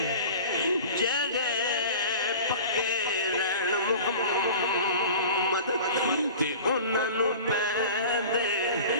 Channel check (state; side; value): inverted; both; correlation -0.38